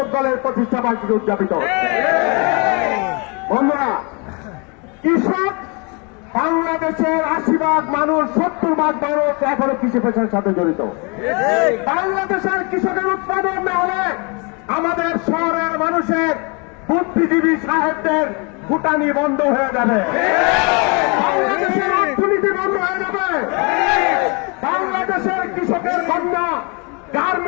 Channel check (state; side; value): quieter; right; 32.0 dB